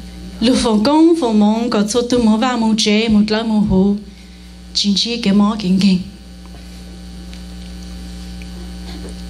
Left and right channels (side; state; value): both; identical; correlation 1.00